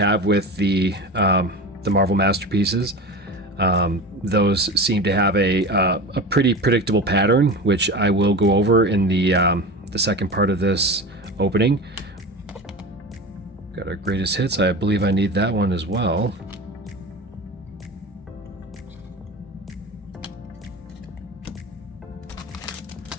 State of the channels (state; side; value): normal; both; correlation 0.29